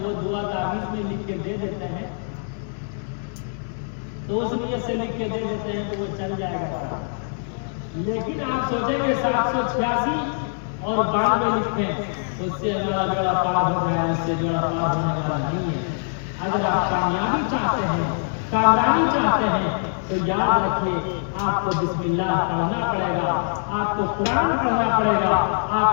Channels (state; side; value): silent; right; 63 dB below the other